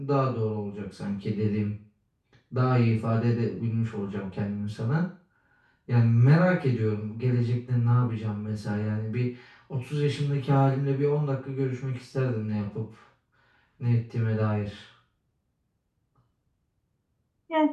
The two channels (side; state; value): both; identical; correlation 1.00